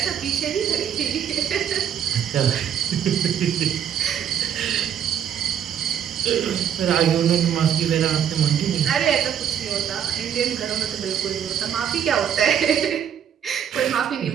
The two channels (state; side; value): quieter; left; 8.9 dB